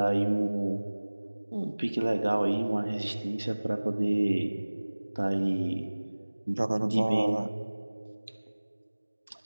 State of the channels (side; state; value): both; inverted; correlation -1.00